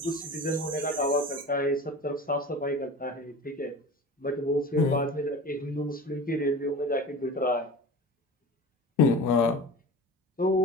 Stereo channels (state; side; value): normal; both; correlation 0.35